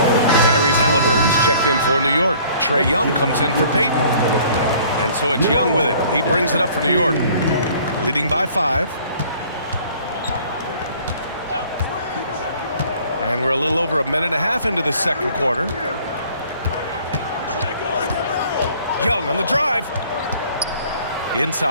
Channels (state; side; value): inverted; both; correlation -0.54